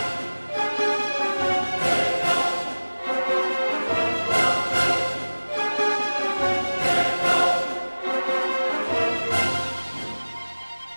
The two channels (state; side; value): inverted; both; correlation -1.00